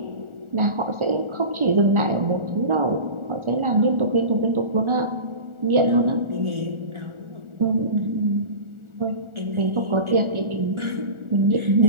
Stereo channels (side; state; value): left; late; 1.4 ms